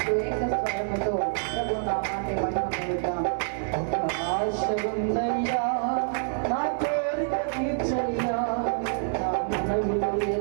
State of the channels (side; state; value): left; silent; digital silence